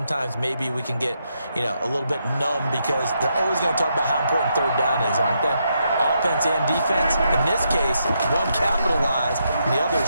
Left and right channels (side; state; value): both; inverted; correlation -0.80